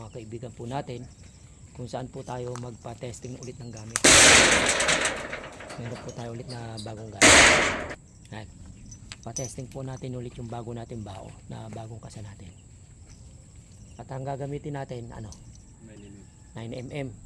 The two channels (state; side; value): identical; both; correlation 1.00